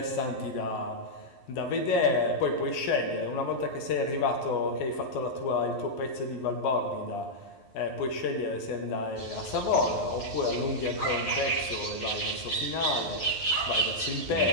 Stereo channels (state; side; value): late; right; 11 ms